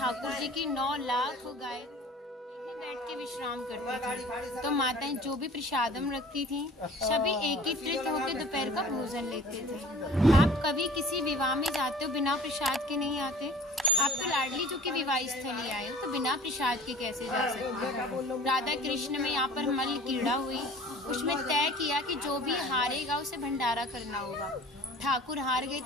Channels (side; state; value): both; normal; correlation 0.46